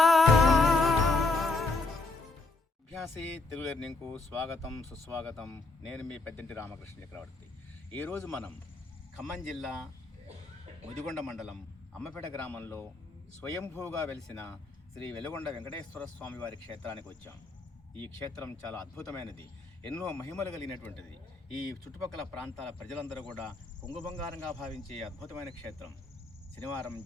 అభ్యాసి తెలుగు లెర్నింగ్కు స్వాగతం సుస్వాగతం. నేను మీ పెద్దంటి రామకృష్ణ చక్రవర్తి. ఈరోజు మనం ఖమ్మం జిల్లా ముదిగొండ మండలం అమ్మపేట గ్రామంలో స్వయంభూగా వెలిసిన శ్రీ వెలుగొండ వెంకటేశ్వర స్వామి వారి క్షేత్రానికి వచ్చాం. ఈ క్షేత్రం చాలా అద్భుతమైనది, ఎన్నో మహిమలు కలిగినటువంటిది. ఈ చుట్టుపక్కల ప్రాంతాల ప్రజలందరూ కూడా కుంగుబంగారంగా భావించే అద్భుతమైన క్షేత్రం. శనివారం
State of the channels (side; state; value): right; quieter; 3.3 dB